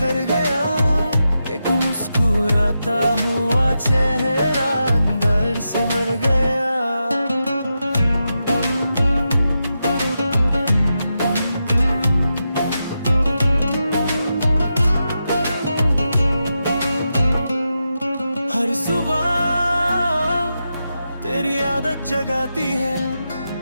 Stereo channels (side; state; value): both; inverted; correlation -0.88